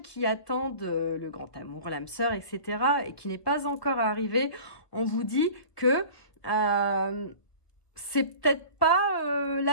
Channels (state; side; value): late; right; 1.2 ms